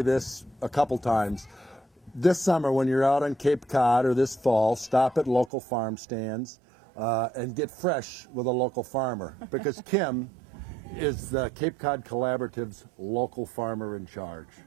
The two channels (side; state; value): left; drops out; at 5.5 s